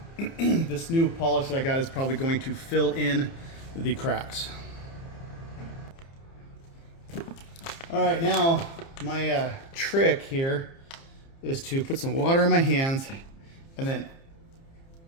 This new polish that I got is probably going to fill in the cracks. All right, now my trick here is to put some water in my hands and then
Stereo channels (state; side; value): late; right; 30 ms